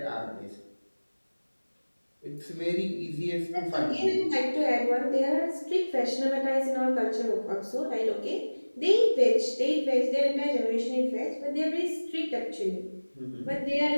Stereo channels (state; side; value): inverted; both; correlation -1.00